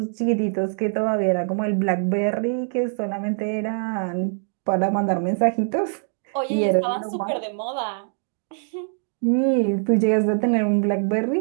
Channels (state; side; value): silent; left; 63 dB below the other